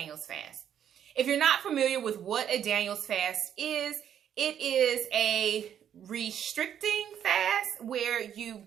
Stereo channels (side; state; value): left; quieter; 9.4 dB